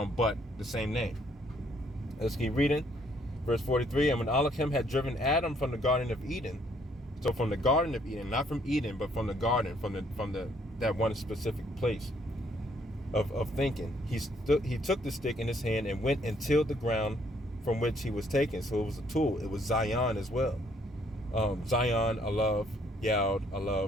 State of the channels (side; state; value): both; normal; correlation 0.67